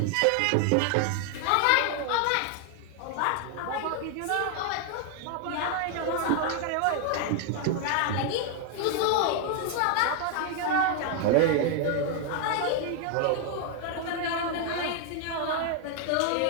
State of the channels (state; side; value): different; both; correlation 0.00